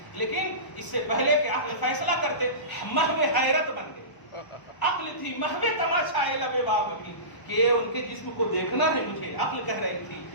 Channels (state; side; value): late; right; 1.0 ms